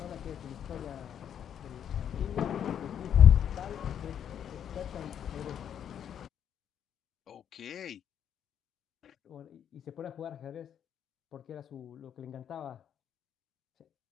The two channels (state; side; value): quieter; right; 9.1 dB